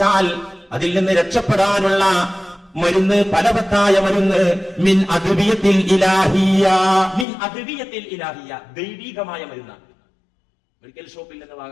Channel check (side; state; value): right; drops out; at 7.2 s